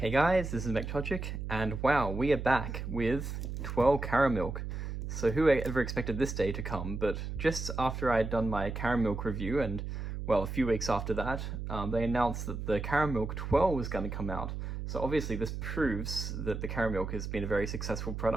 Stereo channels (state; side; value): noise; right; hum, 5 dB below the sound